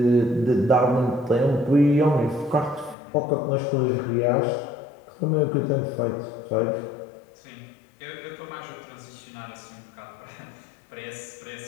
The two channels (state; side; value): drops out; right; at 3.0 s